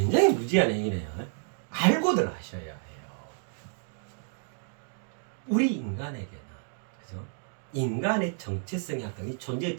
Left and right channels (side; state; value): left; silent; 58 dB below the other